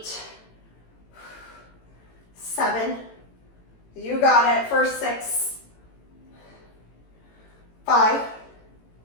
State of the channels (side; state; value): right; late; 18 ms